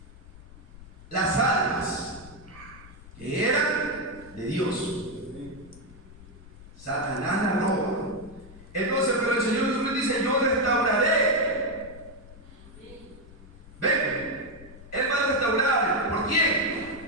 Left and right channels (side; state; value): left; noise; rumble, 19 dB below the sound